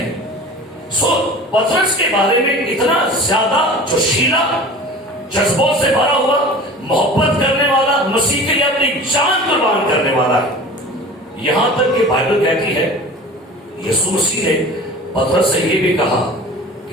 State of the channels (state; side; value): normal; both; correlation 0.39